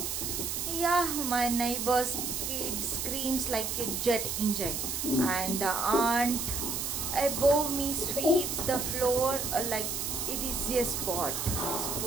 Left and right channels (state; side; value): noise; right; hiss, 2 dB below the sound